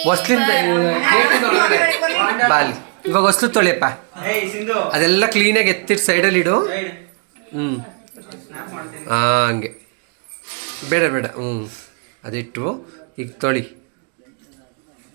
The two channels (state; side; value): quieter; left; 37.6 dB